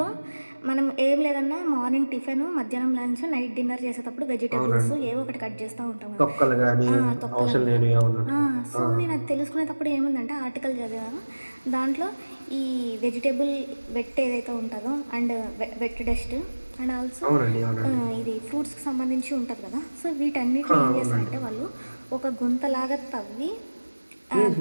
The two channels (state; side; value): inverted; both; correlation -1.00